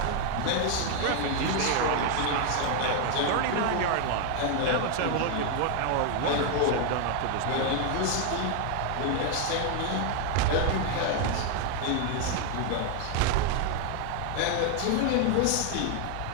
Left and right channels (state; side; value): different; both; correlation 0.01